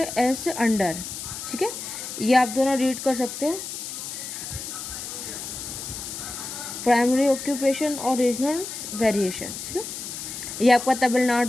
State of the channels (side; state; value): left; noise; hiss, 8 dB below the sound